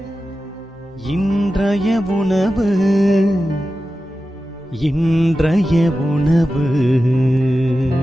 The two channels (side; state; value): both; normal; correlation 0.93